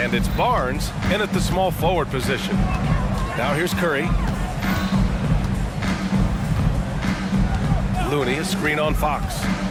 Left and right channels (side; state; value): both; identical; correlation 1.00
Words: it's Barnes in at the small forward position. Now here's Curry. Looney, a screen on Fox.